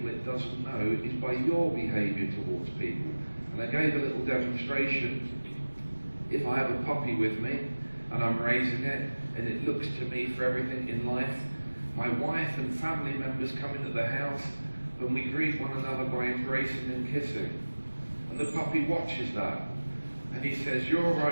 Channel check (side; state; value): both; inverted; correlation -1.00